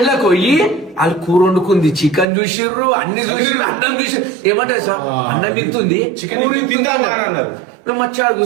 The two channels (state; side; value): drops out; left; at 2.2 s